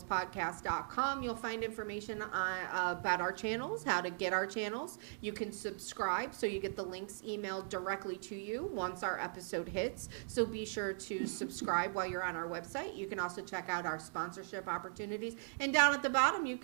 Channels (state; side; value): silent; left; digital silence